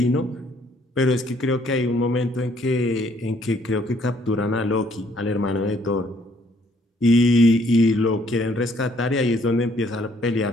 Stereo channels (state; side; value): normal; both; correlation 0.65